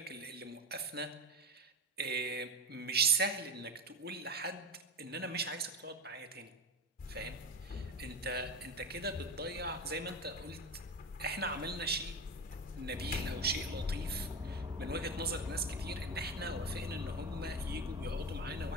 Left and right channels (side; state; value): both; normal; correlation 0.23